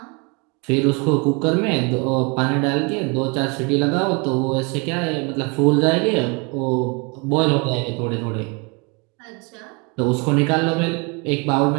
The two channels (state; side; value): quieter; left; 30.3 dB